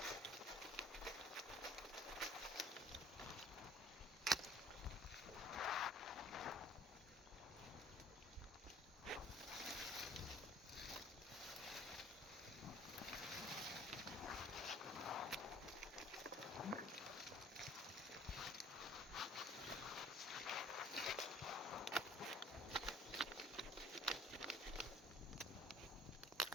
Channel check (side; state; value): both; normal; correlation 0.54